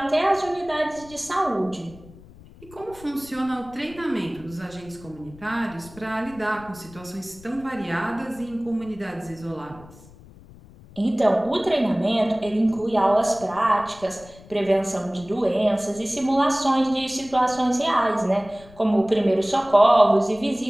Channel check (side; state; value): left; noise; rumble, 21 dB below the sound